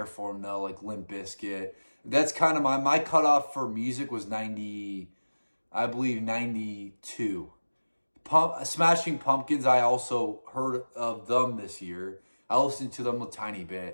for them though, like Limp Bizkit. That's kind of my cutoff for music was 90, I believe 92. Smashing Pumpkins, I also heard of them this year. I listened to them a tiny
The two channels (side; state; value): both; inverted; correlation -1.00